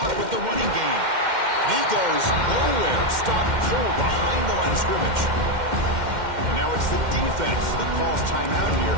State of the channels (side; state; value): left; late; 2.1 ms